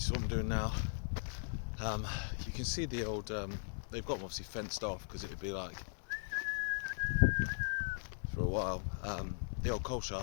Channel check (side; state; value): right; silent; digital silence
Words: is what I'm doing now, you can see the old, they've got them obviously fenced off because it'd be like, for a while, the old coal